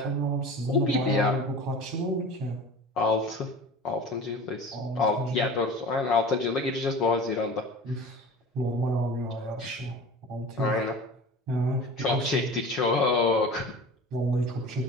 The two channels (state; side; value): normal; both; correlation 0.37